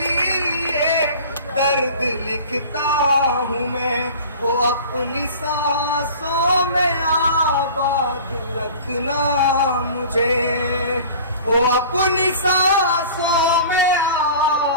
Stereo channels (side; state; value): both; inverted; correlation -0.42